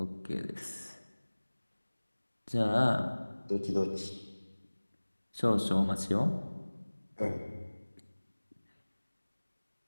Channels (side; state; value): both; inverted; correlation -1.00